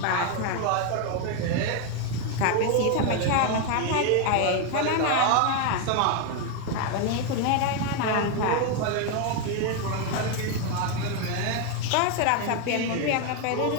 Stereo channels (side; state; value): both; different; correlation 0.01